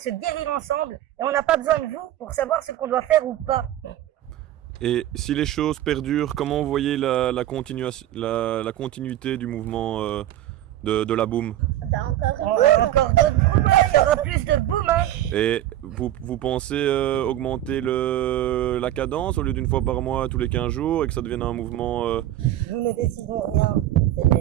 guérir ensemble, et on n'a pas besoin de vous pour savoir ce qu'on doit faire ou pas. Et si les choses perdurent, comment vous voyez la continuité du mouvement de la boum? Encore d'autres boum, il y aura plus de boum. Hein. Et vous pensez augmenter la cadence au lieu d'une fois par mois, tous les 15 jours, et que ça devienne un mouvement... Nous ne décidons rien, c'est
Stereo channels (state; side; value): quieter; left; 13.2 dB